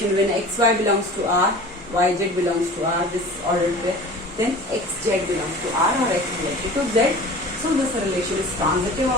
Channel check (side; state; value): both; normal; correlation 0.40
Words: when xy belongs to R, yz belongs to R, this ordered pair, then xz belongs to R or x related to z. So this relation is transitive